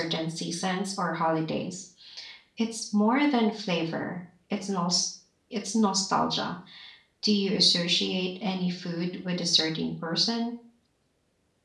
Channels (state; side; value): identical; both; correlation 1.00